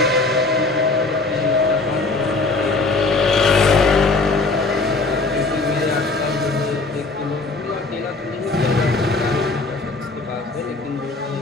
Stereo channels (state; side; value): quieter; right; 3.6 dB